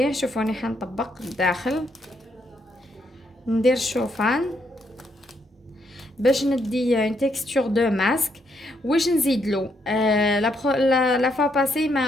شوفوني حنطبق الداخل، ندير الشوفان باش ندي اون تيكستور دو ماسك. واش نزيد له؟ لا فوا باسي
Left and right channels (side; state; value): both; normal; correlation 0.76